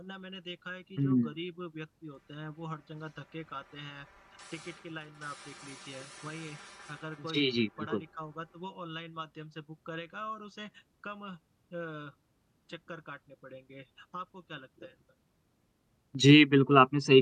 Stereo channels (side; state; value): both; identical; correlation 1.00